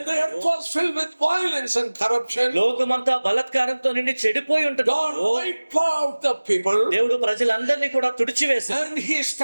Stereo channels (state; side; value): inverted; both; correlation -1.00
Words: the earth was filled with violence and corruption, లోకమంతా బలత్కారంతో నిండి చెడిపోయి ఉంటుంది. God wiped out the people దేవుడు ప్రజలందరినీ కూడా తుడిచివేశాడు. and he